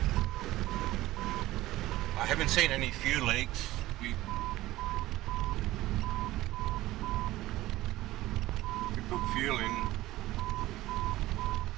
I haven't seen any fuel leaks. We put fuel in,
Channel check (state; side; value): quieter; left; 16.7 dB